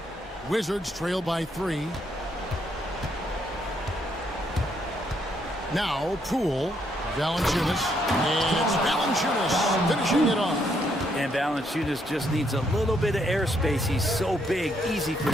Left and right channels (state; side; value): normal; both; correlation 0.74